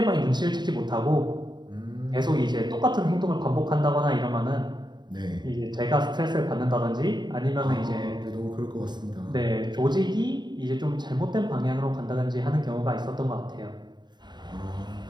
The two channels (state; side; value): late; left; 0.21 ms